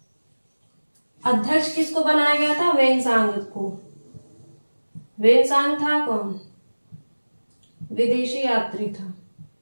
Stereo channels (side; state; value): both; inverted; correlation -1.00